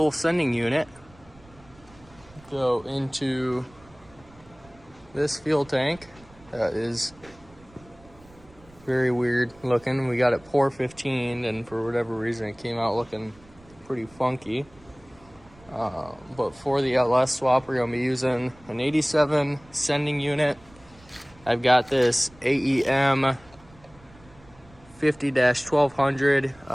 sending unit go into this fuel tank that is very weird looking. We got it pour 15 and for whatever reason it came out looking pretty funky. But for the LS swap, we're going to be using an 87 sending unit. I've got this AEM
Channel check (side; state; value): right; noise; rumble, 25 dB below the sound